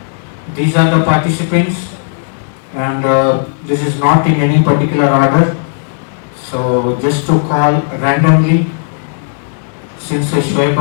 these are the participants, and this is not in any particular order. So just to call randomly, since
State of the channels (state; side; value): silent; right; digital silence